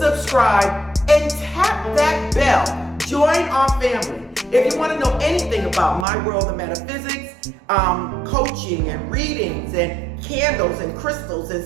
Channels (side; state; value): left; drops out; at 6.1 s